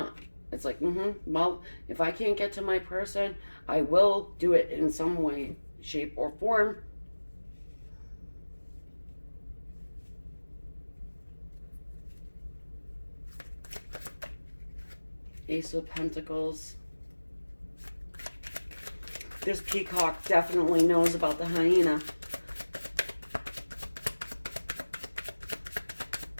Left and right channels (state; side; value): inverted; both; correlation -1.00